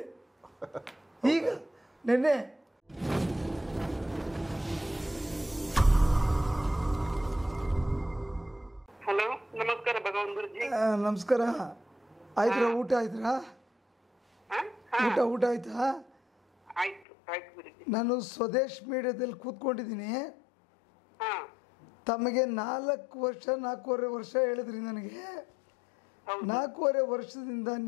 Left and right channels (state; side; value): drops out; right; at 17.1 s